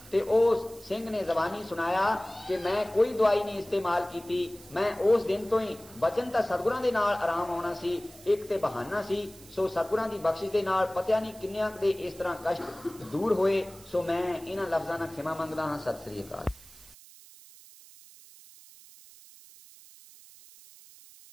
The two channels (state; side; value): noise; right; hiss, 21 dB below the sound